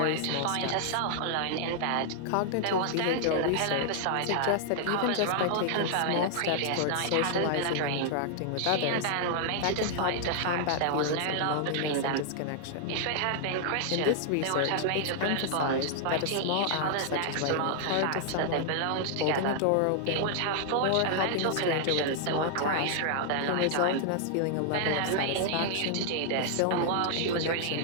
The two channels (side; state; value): both; different; correlation -0.01